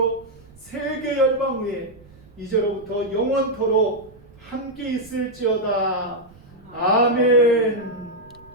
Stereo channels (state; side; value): noise; right; rumble, 25 dB below the sound